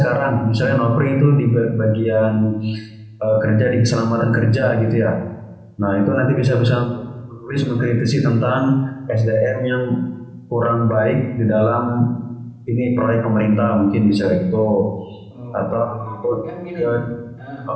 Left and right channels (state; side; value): identical; both; correlation 1.00